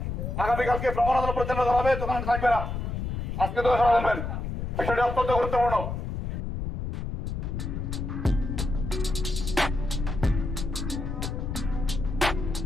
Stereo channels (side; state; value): left; noise; rumble, 4 dB below the sound